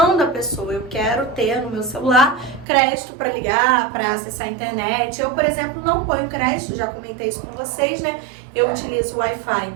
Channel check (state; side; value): drops out; left; at 2.7 s